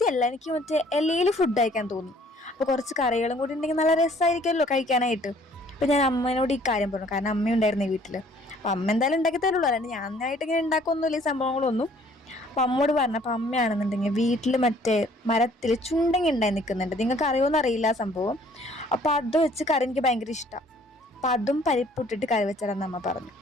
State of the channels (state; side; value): normal; both; correlation 0.58